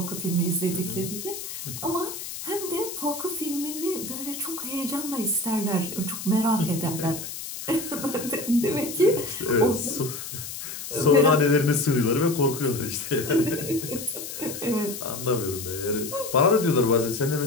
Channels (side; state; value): left; noise; hiss, 8 dB below the sound